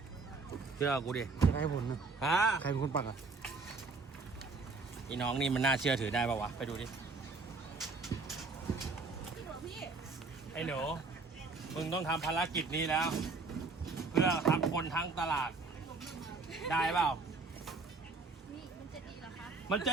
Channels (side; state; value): left; quieter; 4.0 dB